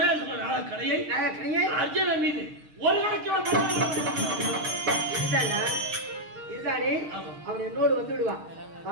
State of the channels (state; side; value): late; left; 6.5 ms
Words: நாக கணையை அர்ஜுனன் மீது ஒரு இதுதானே அவன் என்னோடு வந்து விடுவான்.